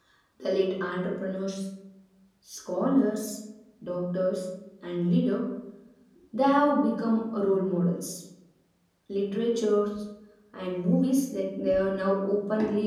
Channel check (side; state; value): both; identical; correlation 1.00